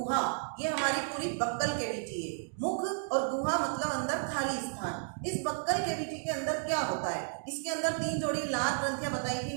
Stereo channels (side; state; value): left; silent; digital silence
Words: ये हमारी पूरी बक्कल कैविटी है। मुख और गुहा मतलब अंदर खाली स्थान। इस बक्कल कैविटी के अंदर क्या होता है, इसके अंदर 3 जोड़ी लार ग्रंथियां बताई थी